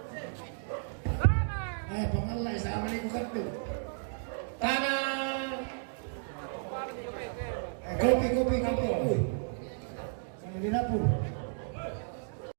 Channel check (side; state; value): left; silent; digital silence